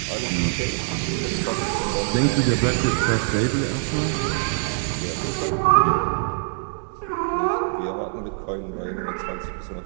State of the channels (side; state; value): left; silent; 63 dB below the other